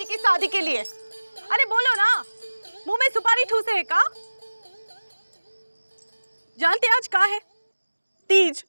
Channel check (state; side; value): inverted; both; correlation -1.00